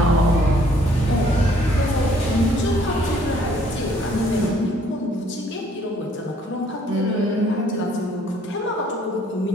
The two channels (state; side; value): normal; both; correlation 0.62